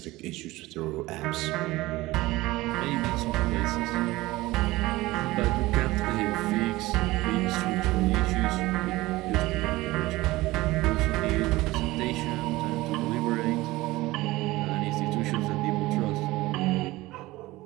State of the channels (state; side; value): quieter; left; 19.1 dB